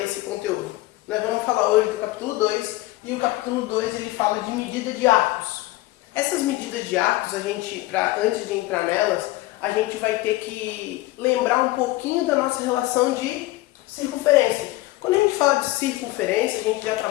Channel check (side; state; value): right; quieter; 18.6 dB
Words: conteúdo. Nós vamos falar hoje do capítulo 2, e o capítulo 2 ele fala de medida de arcos. Essas medidas de arcos, antes de entrar nelas, a gente vai ter que lembrar um pouquinho da nossa relação de circunferência. Quando a gente fala de circunferência, a gente já